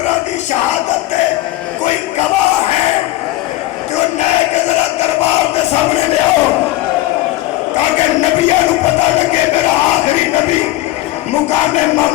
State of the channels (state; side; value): quieter; right; 16.8 dB